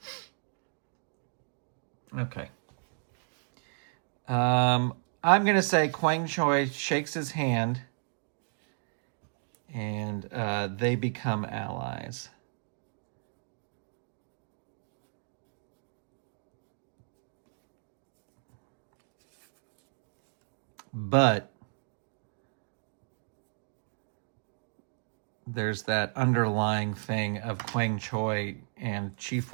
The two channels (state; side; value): silent; left; 56 dB below the other